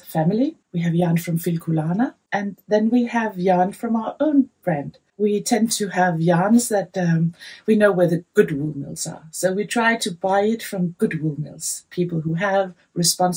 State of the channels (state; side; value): identical; both; correlation 1.00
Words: family. We have yarn from Filkulana, and then we have yarn from our own brand. We tend to have yarns that we know where the good wool mills are. So we try to buy it from good wool mills, people who have